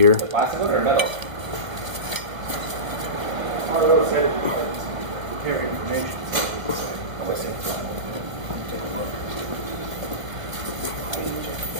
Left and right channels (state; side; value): late; left; 1.1 ms